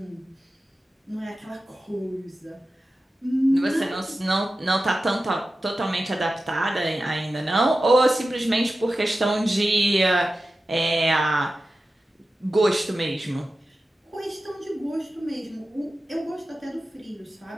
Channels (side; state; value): both; normal; correlation 0.94